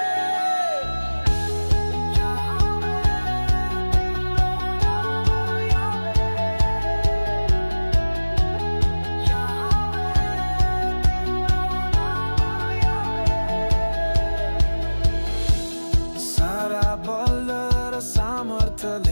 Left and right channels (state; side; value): inverted; both; correlation -1.00